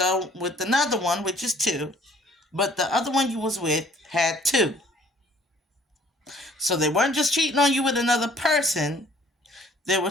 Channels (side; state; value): both; normal; correlation 0.57